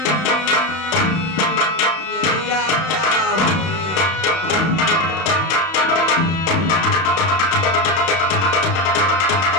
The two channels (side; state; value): right; late; 31 ms